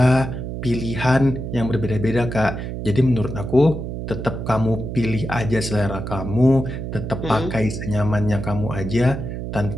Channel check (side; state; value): right; noise; hum, 6 dB below the sound